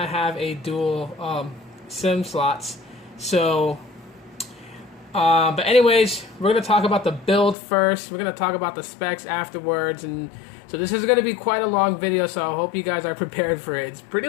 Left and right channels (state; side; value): drops out; right; at 7.6 s